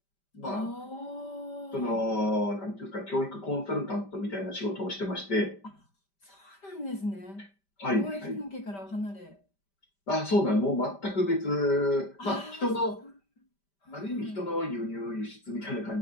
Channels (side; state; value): right; late; 5.1 ms